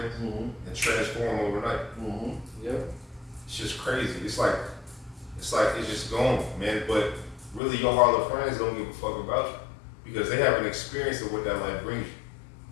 and transform overnight. Yep. It's just crazy. It's like it's just gone, man. But really, your harlot friends don't give a fuck about you because they have an experience of what that life brings you.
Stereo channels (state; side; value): drops out; right; at 7.6 s